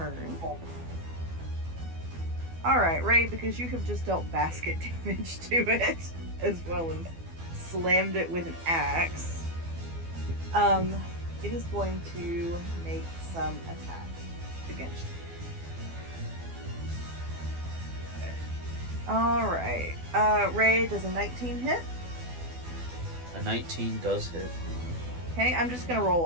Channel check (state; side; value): late; left; 12 ms